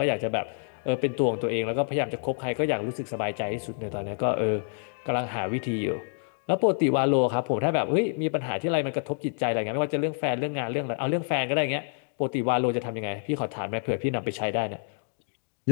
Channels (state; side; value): silent; right; digital silence